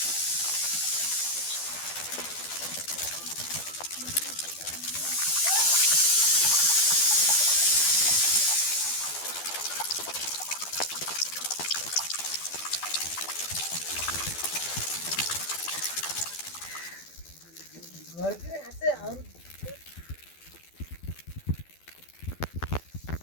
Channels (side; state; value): right; late; 12 ms